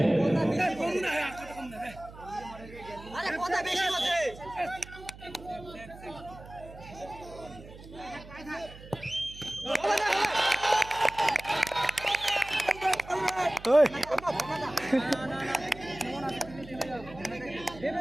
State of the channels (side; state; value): right; noise; hum, 17 dB below the sound